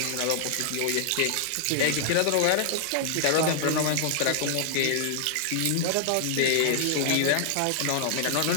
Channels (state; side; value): different; both; correlation -0.01